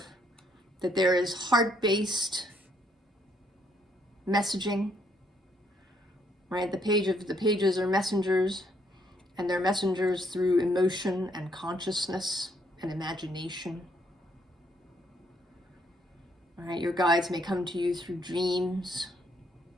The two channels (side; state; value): both; normal; correlation 0.70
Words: that there is heart-based messaging, right? The pages are messengers, and they're messengers through emotion and consciousness and imagination. All right, your guides may come to you through dreams,